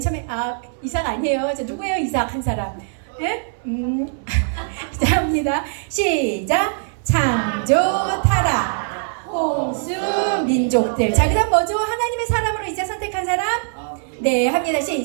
아, 이삭 아니에요. 자, 누구예요? 이삭 한 사람. 네? 자, 합니다. 시작. 창조, 타락, 홍수, 민족들. 자, 그 다음 뭐죠? 하나님의 사람으로 이제 선택한 사람? 네, 합니다.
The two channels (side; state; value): left; silent; 65 dB below the other